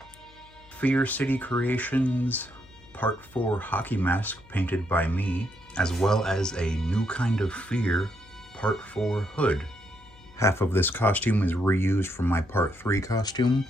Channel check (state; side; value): noise; left; hum, 26 dB below the sound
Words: Fear City Creations Part 4 hockey mask painted by me, as well as a New Kind of Fear Part 4 hood. Half of this costume is reused from my Part 3 costume,